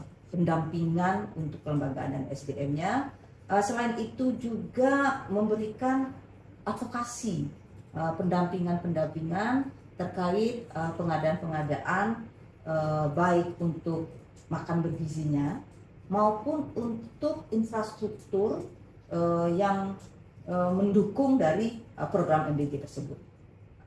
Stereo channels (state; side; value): identical; both; correlation 1.00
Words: Pendampingan untuk kelembagaan dan SDM-nya. Selain itu juga memberikan advokasi, pendampingan terkait pengadaan-pengadaan baik untuk makan bergizinya maupun untuk infrastruktur yang mendukung dari program MBG tersebut.